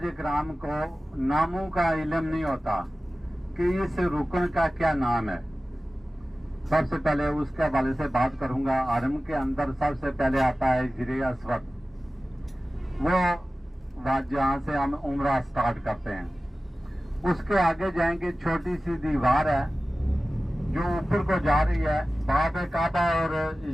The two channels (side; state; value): both; normal; correlation 0.96